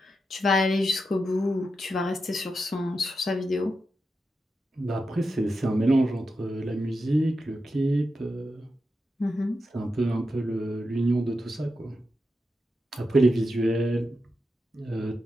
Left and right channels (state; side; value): normal; both; correlation 0.88